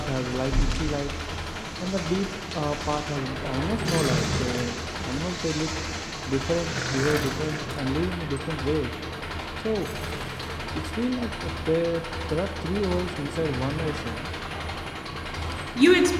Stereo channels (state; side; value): identical; both; correlation 1.00